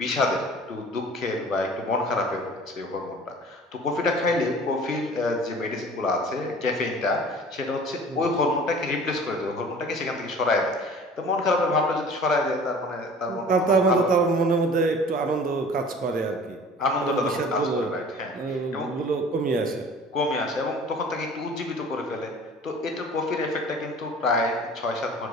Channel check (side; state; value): both; normal; correlation 0.45